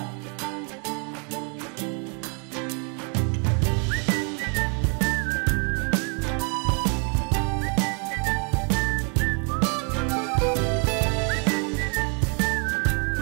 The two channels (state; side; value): quieter; left; 37.6 dB